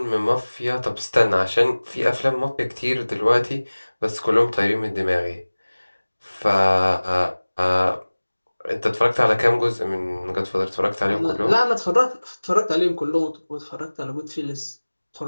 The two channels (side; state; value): both; inverted; correlation -1.00